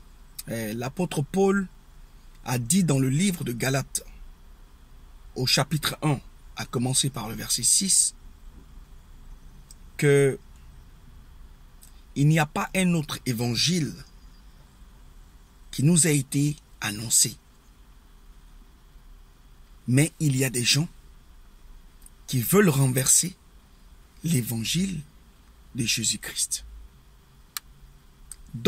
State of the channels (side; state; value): both; identical; correlation 1.00